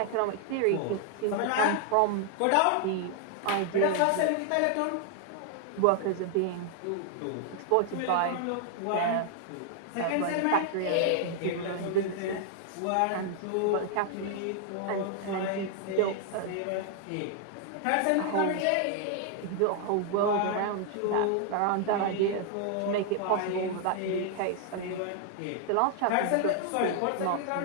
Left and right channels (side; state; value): both; different; correlation 0.00